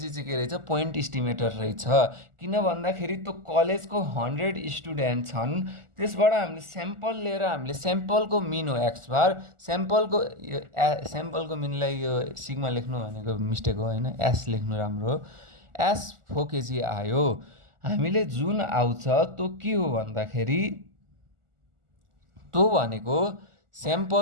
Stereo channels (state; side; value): late; left; 1.4 ms